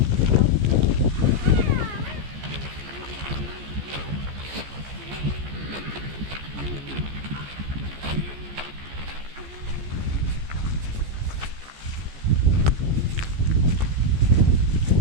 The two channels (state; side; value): late; left; 14 ms